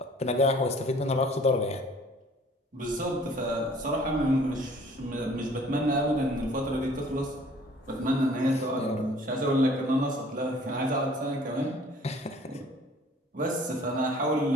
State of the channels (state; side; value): normal; both; correlation 0.54